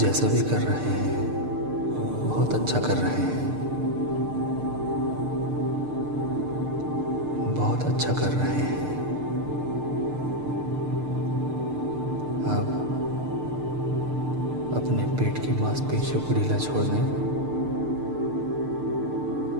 भी कर रहे हैं बहुत अच्छा कर रहे हैं। बहुत अच्छा कर रहे हैं। आप अपने पेट की मांसपेशियों को ढीला छोड़ दें।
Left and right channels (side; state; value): left; late; 6.6 ms